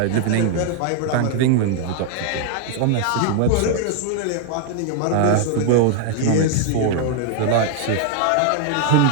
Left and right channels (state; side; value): different; both; correlation 0.00